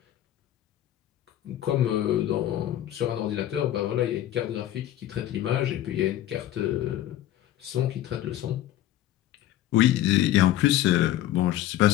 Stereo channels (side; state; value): right; quieter; 13.0 dB